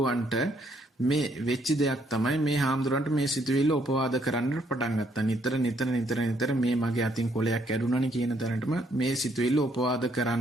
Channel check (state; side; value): normal; both; correlation 0.70